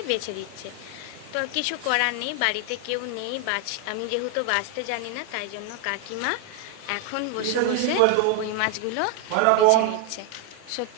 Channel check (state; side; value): different; both; correlation 0.01